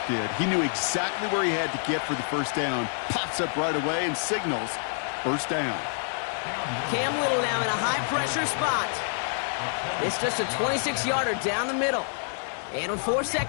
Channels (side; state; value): right; silent; 60 dB below the other